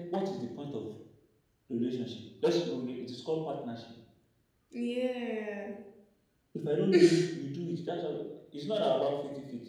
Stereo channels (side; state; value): both; identical; correlation 1.00